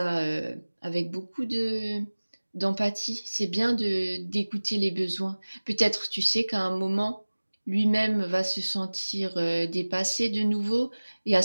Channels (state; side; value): inverted; both; correlation -1.00